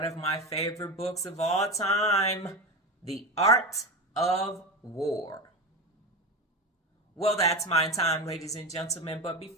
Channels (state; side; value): normal; both; correlation 0.23